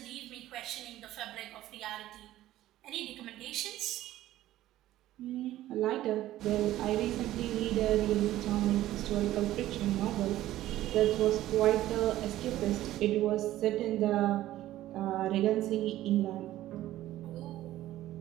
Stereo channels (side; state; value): left; quieter; 14.5 dB